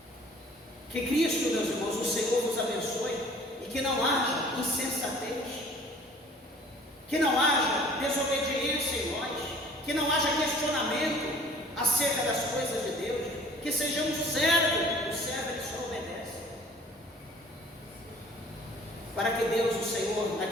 Que Cristo, meus irmãos, o Senhor vos abençoe, e que não haja insensatez, que não haja desobediência em nós, que não haja questionamento acerca das coisas de Deus, que sejamos servos, o servo que só obedece, para que Deus, o Senhor,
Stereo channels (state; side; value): normal; both; correlation 0.52